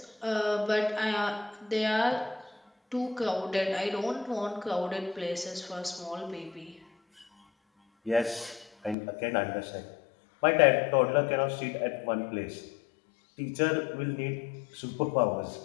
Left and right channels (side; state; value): right; drops out; at 9.0 s